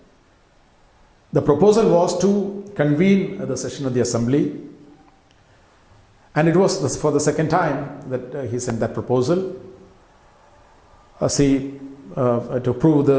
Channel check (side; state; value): both; identical; correlation 1.00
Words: The proposal was to convene the session of the assembly, and it was for the second time that he sent that proposal to prove